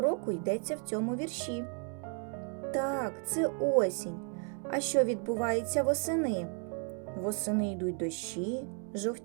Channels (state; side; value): quieter; left; 38.5 dB